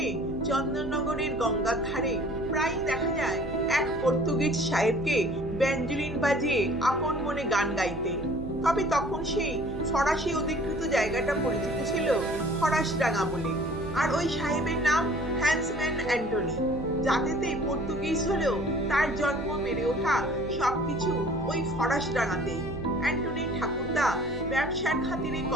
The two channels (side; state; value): right; noise; hum, 10 dB below the sound